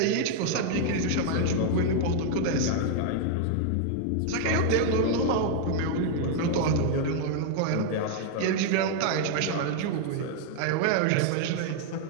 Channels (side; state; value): both; different; correlation 0.00